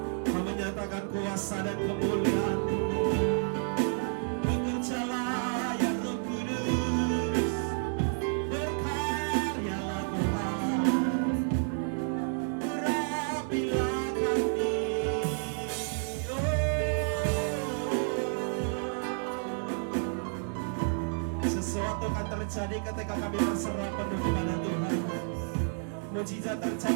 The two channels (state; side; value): silent; left; 57 dB below the other